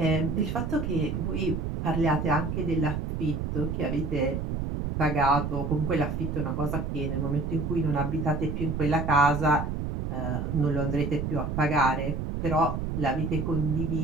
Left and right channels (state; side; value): noise; right; rumble, 3 dB below the sound